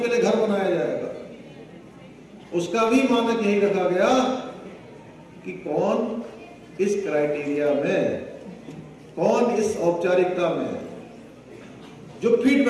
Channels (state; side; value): identical; both; correlation 1.00